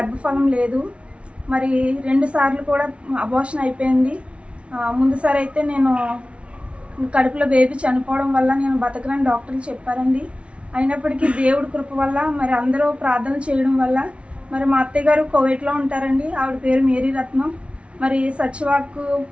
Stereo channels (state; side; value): late; left; 0.061 ms